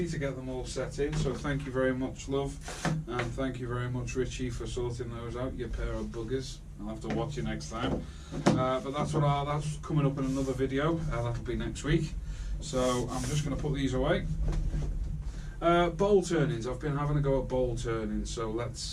to get them all set in. So thank you very much, love, and thank you very much, Richie, for sorting those out, you pair of buggers. I'll have to watch you next time. But that's coming up in another video. That'll be next week. So I'm just going to put these away. Bowl turnings. I've been having a go at bowl turnings, so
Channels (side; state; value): both; identical; correlation 1.00